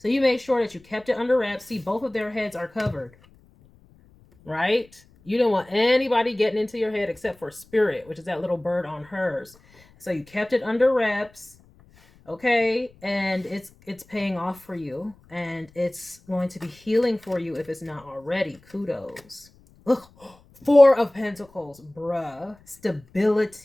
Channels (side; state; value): left; noise; rumble, 28 dB below the sound